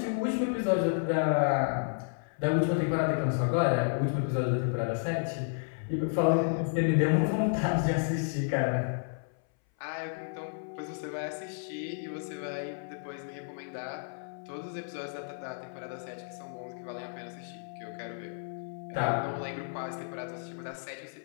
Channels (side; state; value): right; silent; 57 dB below the other